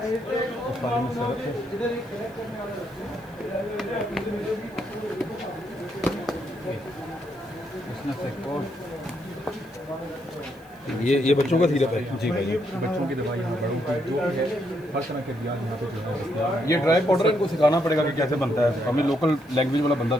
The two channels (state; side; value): noise; left; hiss, 29 dB below the sound